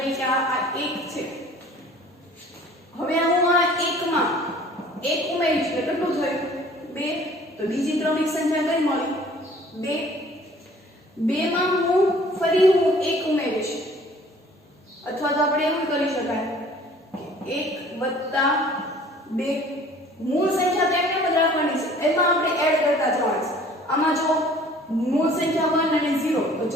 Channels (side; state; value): both; normal; correlation 0.52